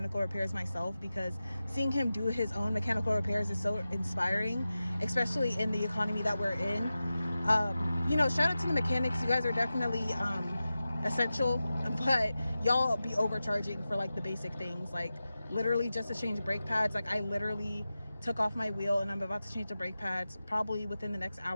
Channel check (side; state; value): both; inverted; correlation -0.94